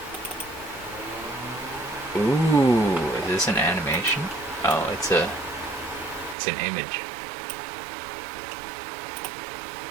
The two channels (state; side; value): drops out; left; at 6.4 s